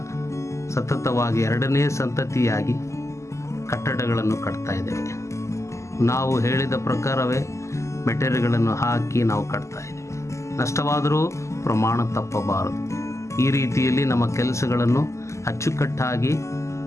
ಸತತವಾಗಿ 2ನೇ ಸಂತತಿಯಾಗಿ ಕಟ್ಟಡಗಳನ್ನು ಕಟ್ತಾ ಇದ್ದೇವೆ. ನಾವು ಹೇಳಿದ ಪ್ರಕಾರವೇ ಮೆಟೀರಿಯಲ್ಗಳನ್ನು ಹಾಕಿ ನಾವು ಕಟ್ತಾ ಇದ್ದೇವೆ. ನಷ್ಟವಾದರೂ ಪ್ರಮಾಣ ತಪ್ಪಬಾರದು. ಈ ರೀತಿಯಲ್ಲಿ ನಮ್ಮ ಕೆಲಸಗಳನ್ನು ಅಚ್ಚುಕಟ್ಟಾಗಿ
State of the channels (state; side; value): late; right; 0.14 ms